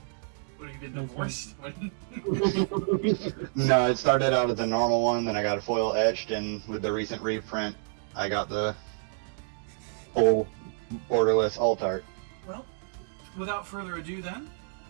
What, have you been divorced? No, it started out as a normal one, then I got a foil etched, and with the recent reprint, I got the whole borderless alt art. Well, without further ado then,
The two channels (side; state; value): left; silent; digital silence